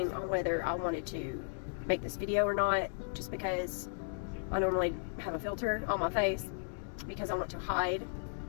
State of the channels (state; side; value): silent; right; digital silence